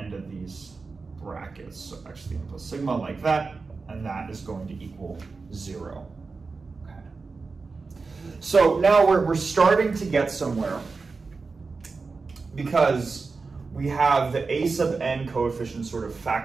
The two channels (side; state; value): left; quieter; 4.3 dB